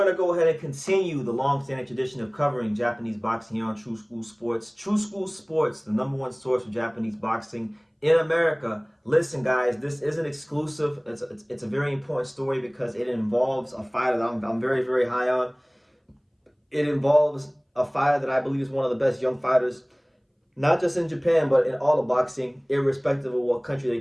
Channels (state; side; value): identical; both; correlation 1.00